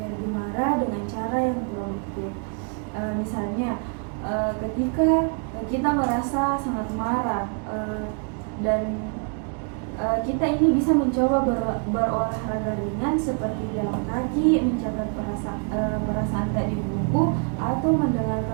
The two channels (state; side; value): quieter; left; 39.3 dB